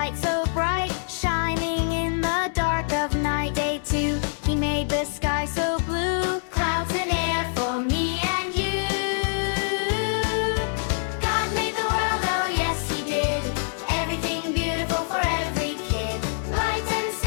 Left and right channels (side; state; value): right; silent; 62 dB below the other